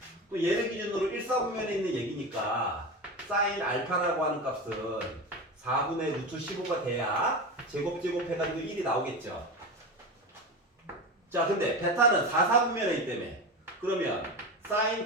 또 얘를 기준으로 1, 4분면에 있는 얘기니까 사인 알파라고 하는 값은 4분의 루트 15가 돼야 제곱 해가지고 1이 나오겠죠. 자, 근데 베타는 4, 4분면에 있기 때문에 그러면 사인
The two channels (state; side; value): normal; both; correlation 0.23